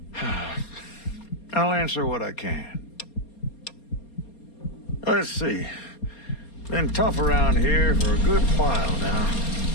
I'll answer what I can. Let's see. Been tough around here for a good while now.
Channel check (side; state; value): right; late; 4.3 ms